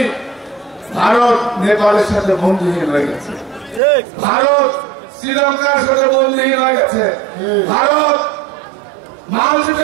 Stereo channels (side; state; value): left; drops out; at 3.8 s